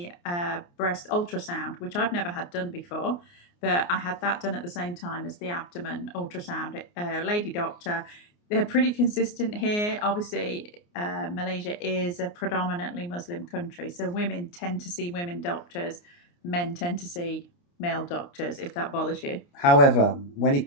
breast ultrasound, which I've never had done before, but I had that done at the same time as the abdomen ultrasound. Lady doctor, they're pretty consistent here. Obviously, Malaysia is a predominantly Muslim country, so women tend to see women doctors, men tend to see male doctors, if that bothers you. However, when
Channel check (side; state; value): right; late; 29 ms